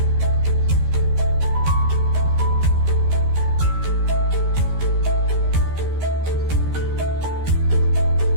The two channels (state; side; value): late; left; 13 ms